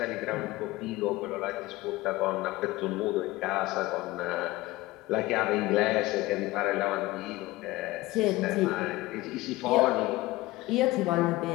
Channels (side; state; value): right; quieter; 19.1 dB